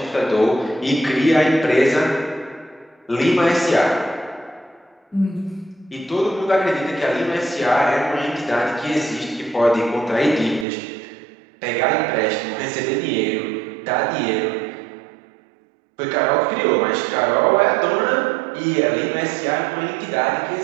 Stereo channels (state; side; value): drops out; left; at 10.7 s